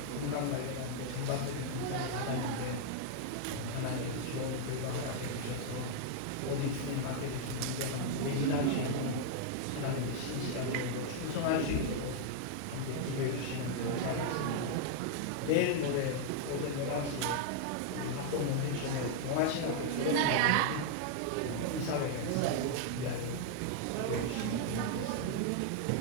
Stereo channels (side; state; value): both; different; correlation 0.00